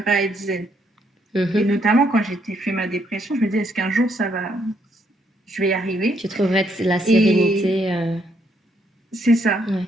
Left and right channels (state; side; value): normal; both; correlation 0.72